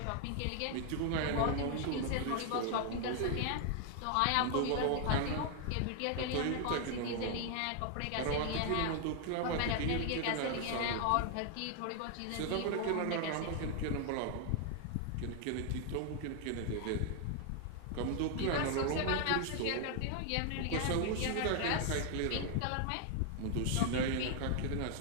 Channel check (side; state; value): both; different; correlation 0.00